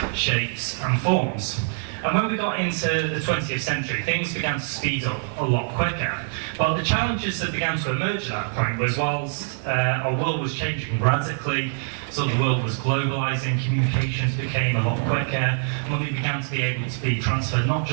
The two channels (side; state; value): left; silent; 62 dB below the other